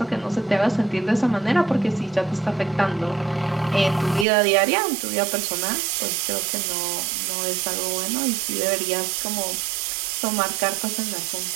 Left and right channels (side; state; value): left; drops out; at 4.2 s